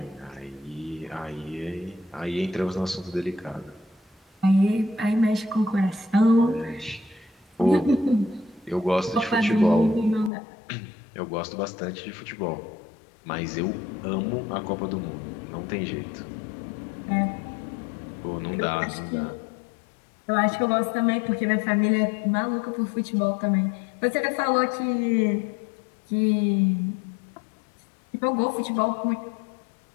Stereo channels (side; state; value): right; drops out; at 10.3 s